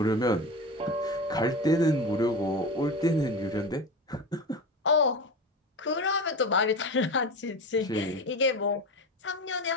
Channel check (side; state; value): both; normal; correlation 0.26